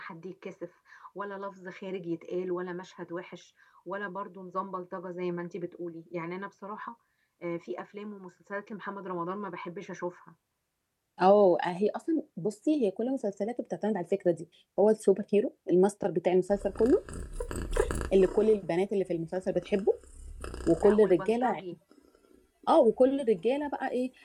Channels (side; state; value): both; identical; correlation 1.00